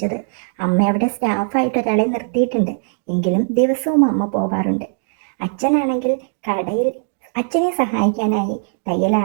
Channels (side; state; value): left; silent; digital silence